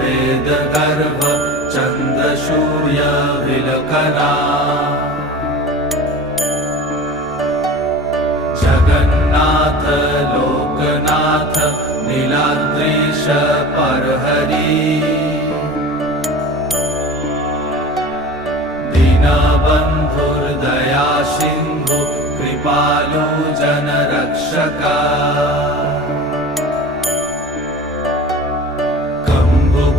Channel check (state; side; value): normal; both; correlation 0.36